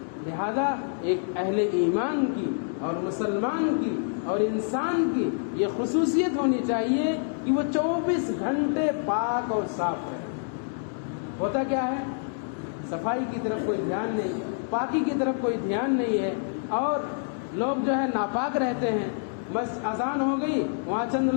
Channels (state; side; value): silent; right; digital silence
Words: لہذا ایک اہل ایمان کی اور مسلمان کی اور انسان کی یہ خصوصیت ہونی چاہیے کہ وہ 24 گھنٹے پاک اور صاف رہے۔ ہوتا کیا ہے؟ صفائی کی طرف کوئی دھیان نہیں، پاکی کی طرف کوئی دھیان نہیں ہے، اور لوگ جو ہے ناپاک رہتے ہیں۔ بس اذان ہو گئی، وہاں چند